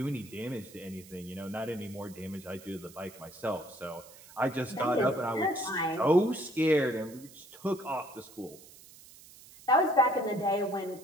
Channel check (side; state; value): right; noise; hiss, 20 dB below the sound